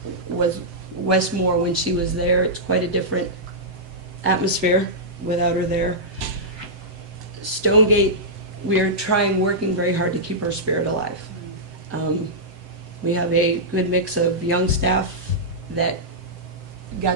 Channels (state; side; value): late; left; 7.8 ms